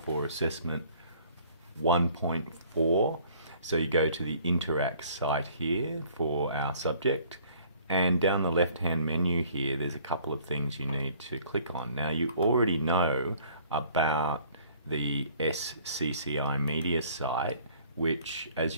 for assessment 1.4. So you go to the Interact site here for our subject, and down the left hand menu here there's a couple of things you need to click on. Now you already know about the SCCI Media site, which, as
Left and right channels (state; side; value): inverted; both; correlation -0.56